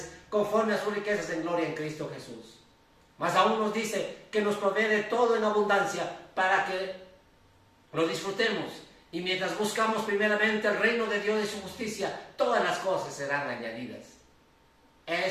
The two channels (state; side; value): identical; both; correlation 1.00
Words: conforme a sus riquezas en gloria en Cristo Jesús. Más aún nos dice que nos provee de todo en abundancia para que lo disfrutemos. Y mientras buscamos primeramente el reino de Dios y su justicia, todas las cosas serán añadidas.